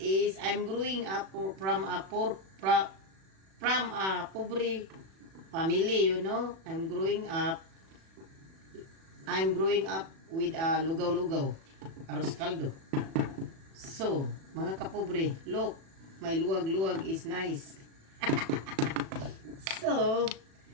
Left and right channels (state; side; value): late; left; 36 ms